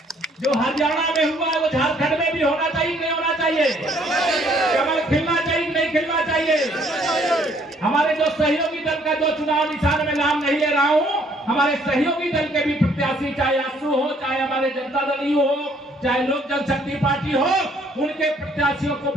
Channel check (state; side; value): normal; both; correlation 0.63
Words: जो हरियाणा में हुआ है वो झारखंड में भी होना चाहिए, नहीं होना चाहिए? कमल खिलना चाहिए, नहीं खिलना चाहिए? हमारे जो सहयोगी दल का जो चुनाव निशान में नाम नहीं ले रहा हूं, हमारे सहयोगी दल के भी प्रत्याशी, चाहे आसू हो, चाहे हमारे जनता दल हो, चाहे लोक जनशक्ति पार्टी हो, उनके प्रत्याशियों को